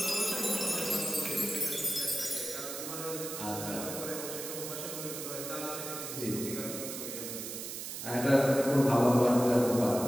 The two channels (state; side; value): noise; right; hiss, 7 dB below the sound